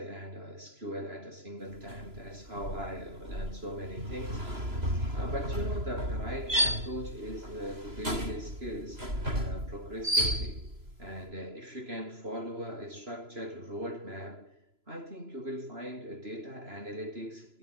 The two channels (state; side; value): late; left; 3.0 ms